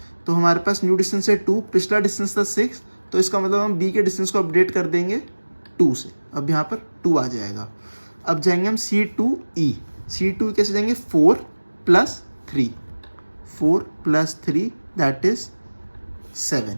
तो हमारे पास न्यू डिस्टेंस है 2, पिछला डिस्टेंस था 6, तो इसका मतलब हम B के डिस्टेंस को अपडेट कर देंगे 2 से, अब यहाँ पर 2 आ जाएगा। अब जाएंगे हम C to E, C to कैसे जाएंगे, 4 + 3 दैट इज 7।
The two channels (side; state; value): both; inverted; correlation -1.00